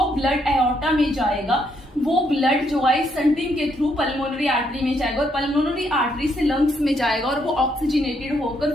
ब्लड एओर्टा में जाएगा वो ब्लड जो है स्टंटिंग के थ्रू पल्मोनरी आर्टरी में जाएगा और पल्मोनरी आर्टरी से लंग्स में जाएगा और वो ऑक्सीजनेटेड होकर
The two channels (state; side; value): normal; both; correlation 0.74